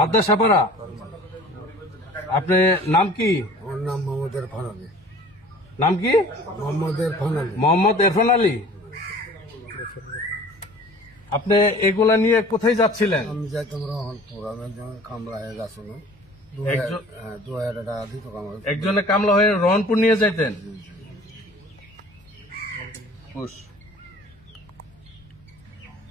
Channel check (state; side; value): normal; both; correlation 0.46